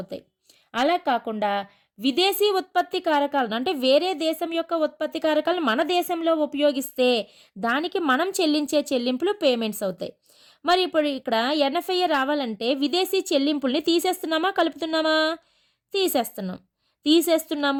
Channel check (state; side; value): identical; both; correlation 1.00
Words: అలా కాకుండా విదేశీ ఉత్పత్తి కారకాలను అంటే వేరే దేశం యొక్క ఉత్పత్తి కారకాలను మన దేశంలో ఉపయోగిస్తే దానికి మనం చెల్లించే చెల్లింపులు పేమెంట్స్ అవుతాయి. మరి ఇప్పుడు ఇక్కడ ఎన్ఎఫ్ఐఏ రావాలంటే విదేశీ చెల్లింపుల్ని తీసేస్తున్నామా కలుపుతున్నామా?